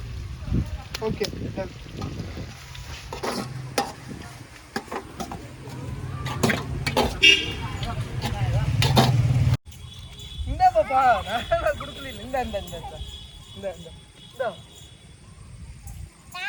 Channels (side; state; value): both; identical; correlation 1.00